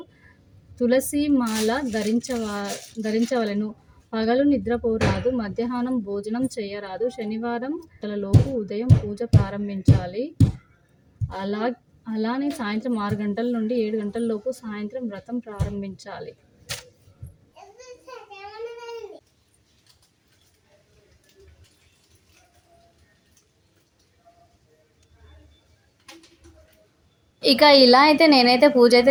తులసి మాల ధరించవలెను. పగలు నిద్రపోరాదు. మధ్యాహ్నం భోజనం చేయరాదు. శనివారం లోపు ఉదయం పూజ ప్రారంభించాలి. అలానే సాయంత్రం 6 గంటల నుండి 7 గంటల లోపు సాయంత్రం వ్రతం ప్రారంభించాలి. ఇక ఇలా అయితే నేనైతే పూజ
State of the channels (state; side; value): identical; both; correlation 1.00